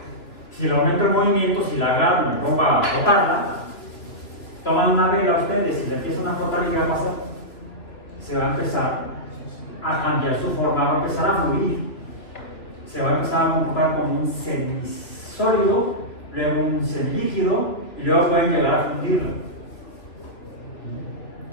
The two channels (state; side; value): late; right; 3.0 ms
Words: Si le aumento el movimiento, si la agarro y me pongo a frotarla, toman una vela ustedes y le empiezan a frotar, y ¿qué va a pasar? Se va a empezar a cambiar su forma, va a empezar a fluir, se va a empezar a comportar como un semisólido, luego un semilíquido y luego pueden llegar a fundirlo,